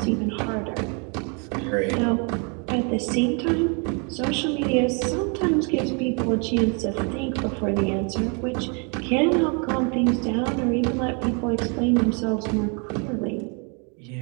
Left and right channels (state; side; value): quieter; left; 35.5 dB